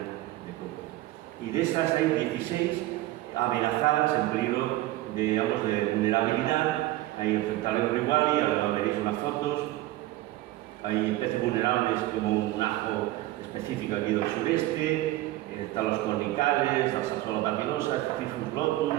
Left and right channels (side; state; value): left; quieter; 16.7 dB